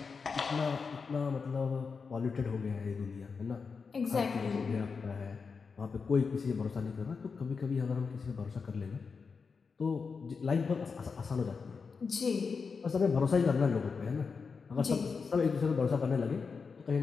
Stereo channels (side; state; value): right; quieter; 5.2 dB